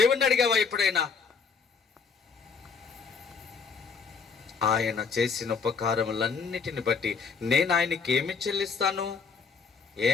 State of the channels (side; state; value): right; quieter; 5.5 dB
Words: అడిగావా ఎప్పుడైనా? ఆయన చేసిన ఉపకారములన్నిటిని బట్టి నేను ఆయనకి ఏమి చెల్లిస్తాను?